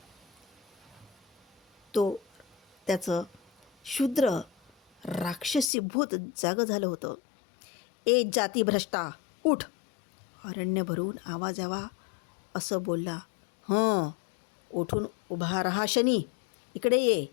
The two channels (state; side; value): drops out; right; at 5.7 s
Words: त्याचं शूद्र राक्षसी भूत जागं झालं होतं. ए जाती भ्रष्टा, उठ! अरण्य भरून आवाज यावा असं बोलला. उठून उभा रहा शनी, इकडे ये